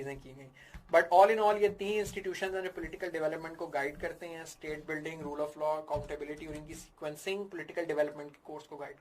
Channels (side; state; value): both; identical; correlation 1.00